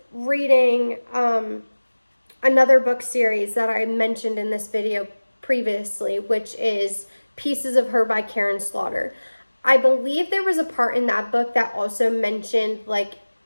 reading another book series that I mentioned in this video previously, which is Pieces of Her by Karen Slaughter, I believe there was a part in that book that also mentioned like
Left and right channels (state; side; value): inverted; both; correlation -1.00